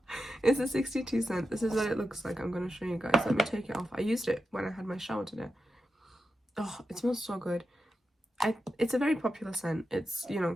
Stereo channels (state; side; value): normal; both; correlation 0.90